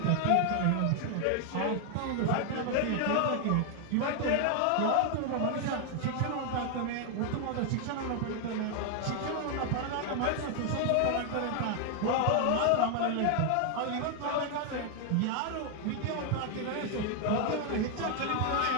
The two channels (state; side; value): different; both; correlation 0.00